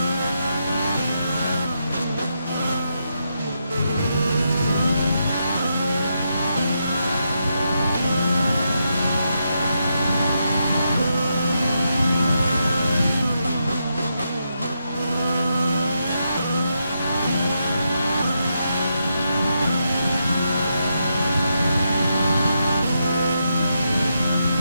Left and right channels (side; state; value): both; inverted; correlation -0.83